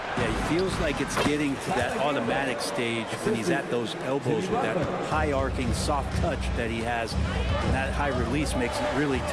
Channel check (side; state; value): both; identical; correlation 1.00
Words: Yeah, he feels like it's getting to that automatic stage when he's at those elbows with that high arcing soft touch that he has. And that high release makes it really